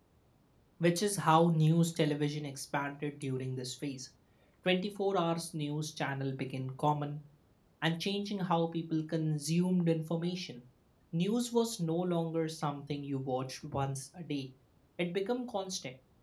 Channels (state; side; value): identical; both; correlation 1.00